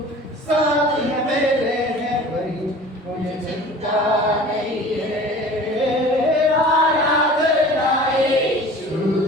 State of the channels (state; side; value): normal; both; correlation 0.42